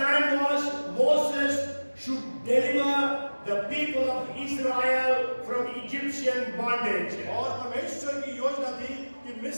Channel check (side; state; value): both; inverted; correlation -1.00